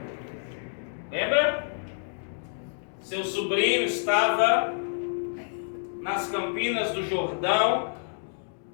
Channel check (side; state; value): right; silent; digital silence